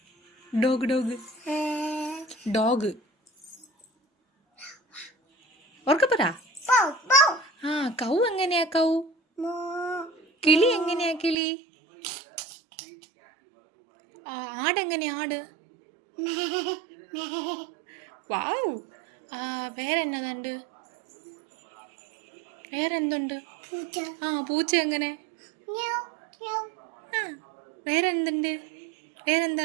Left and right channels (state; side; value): drops out; left; at 11.4 s